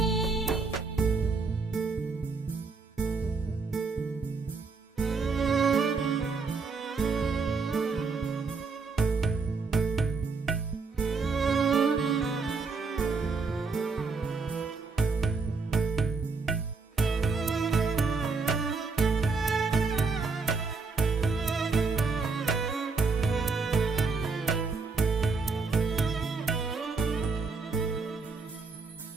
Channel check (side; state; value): left; quieter; 4.4 dB